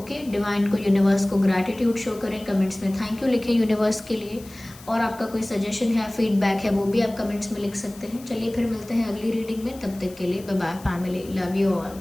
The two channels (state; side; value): noise; left; hiss, 21 dB below the sound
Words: डिवाइन को, यूनिवर्स को ग्रैटिट्यूड शो करें, कमेंट्स में थैंक यू लिखें यूनिवर्स के लिए, और आपका कोई सजेशन है, फीडबैक है, वो भी आप कमेंट्स में लिख सकते हैं। चलिए फिर मिलते हैं अगली रीडिंग में, तब तक के लिए bye bye family, love you